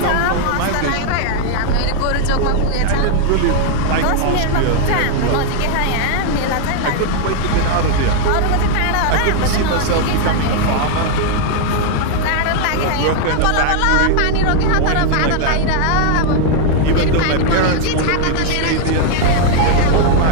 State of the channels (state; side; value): different; both; correlation 0.00